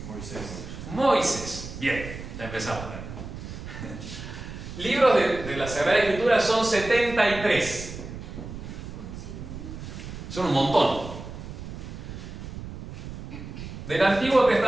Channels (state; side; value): noise; right; rumble, 10 dB below the sound